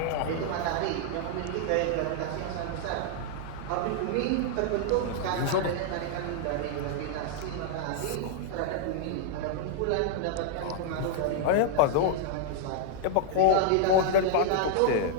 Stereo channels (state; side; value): different; both; correlation -0.01